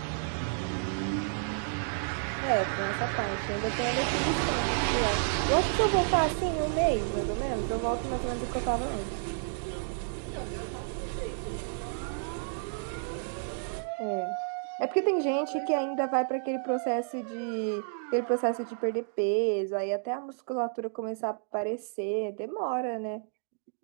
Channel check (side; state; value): left; silent; digital silence